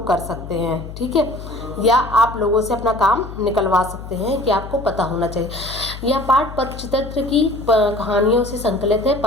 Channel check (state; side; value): noise; left; hum, 12 dB below the sound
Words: सकते हैं। ठीक है, या आप लोगों से अपना काम निकलवा सकते हैं कि आपको पता होना चाहिए। यह पाठ पंचतंत्र की कहानियों से संकलित है।